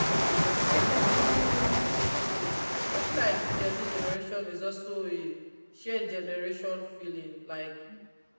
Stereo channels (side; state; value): both; inverted; correlation -1.00